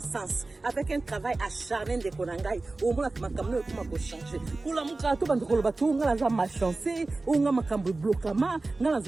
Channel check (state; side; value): quieter; left; 3.3 dB